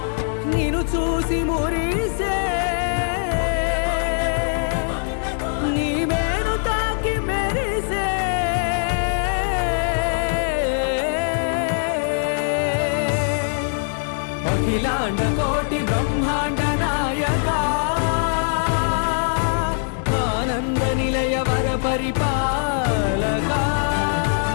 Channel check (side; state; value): right; silent; digital silence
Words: నిన్ను చూసి మురిసే నీ మేను తాకి మెరిసే అఖిలాండ కోటి బ్రహ్మాండ నాయక ఆనంద నిలయ వర పరిపాలక